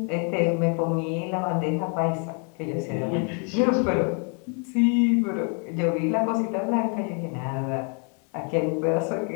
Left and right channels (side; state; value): right; quieter; 38.7 dB